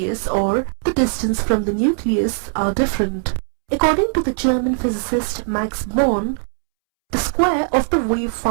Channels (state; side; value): silent; left; 66 dB below the other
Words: or the distance from the nucleus, are different. According to the German physicist Max Born, the square of the wave